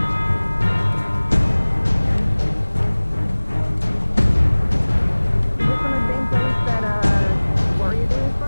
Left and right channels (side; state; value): both; inverted; correlation -1.00